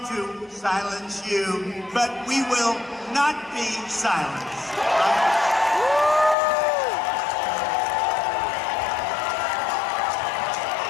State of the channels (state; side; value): drops out; right; at 6.4 s